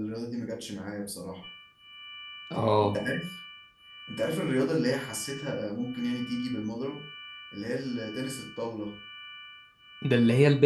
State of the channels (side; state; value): both; identical; correlation 1.00